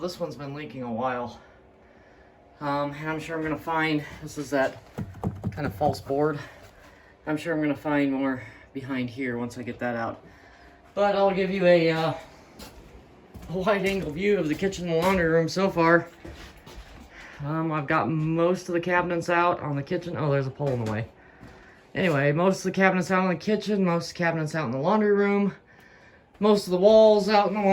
one's been leaking a while. And I'm sure I'm gonna find, this is that kind of false board. I'm sure I'm gonna find more behind here once I get that out. But I'll give you a wide angle view of the kitchen and laundry room so far. I've got most of the cabinets out on the kitchen. Oh, there's a pole in the way. Anyway, most of the cabinets out in the kitchen, most of the cabinets out in the laundry room, most of the walls out in the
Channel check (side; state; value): both; identical; correlation 1.00